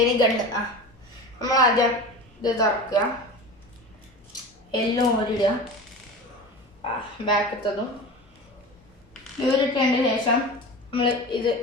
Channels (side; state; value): both; normal; correlation 0.31